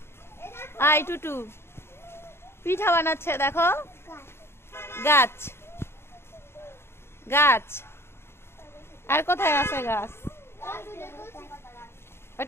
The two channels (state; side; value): late; right; 0.12 ms